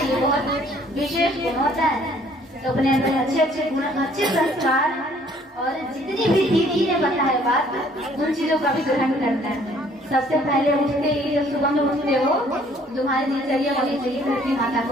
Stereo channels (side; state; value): both; normal; correlation 0.60